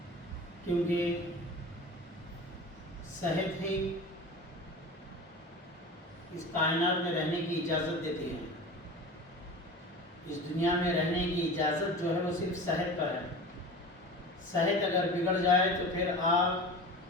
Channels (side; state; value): both; normal; correlation 0.34